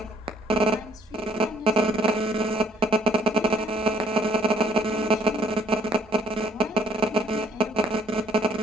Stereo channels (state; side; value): normal; both; correlation 0.64